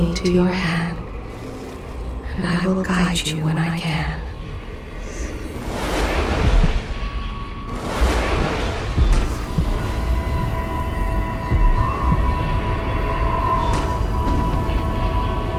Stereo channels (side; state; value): both; identical; correlation 1.00